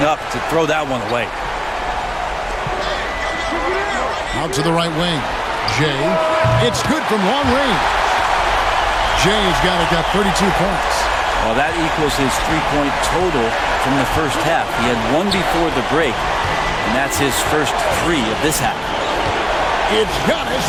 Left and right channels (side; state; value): both; identical; correlation 1.00